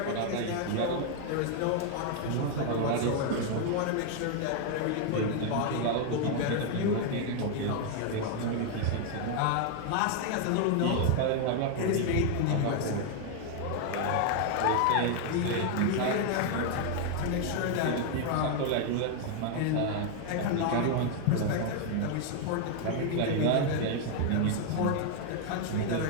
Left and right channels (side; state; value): both; different; correlation 0.00